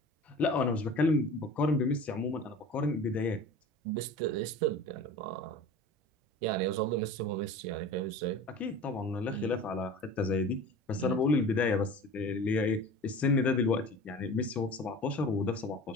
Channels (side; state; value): both; normal; correlation 0.39